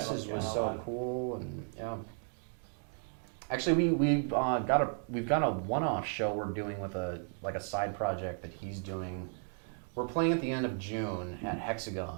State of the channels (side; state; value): left; silent; 55 dB below the other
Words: so cool, and yeah. Actually, we've got a one-off show we're doing with a side project that he's doing. We're playing at the end of June at